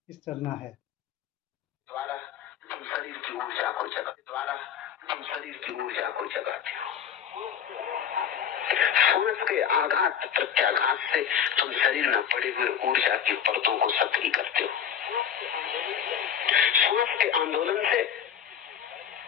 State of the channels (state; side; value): quieter; right; 8.7 dB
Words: इस चलना है। द्वारा तुम शरीर की ऊर्जा को जगाते हो। श्वास के आघात प्रत्याघात से तुम शरीर में पड़े हुए ऊर्जा की परतों को सक्रिय करते हो। श्वास के आंदोलन से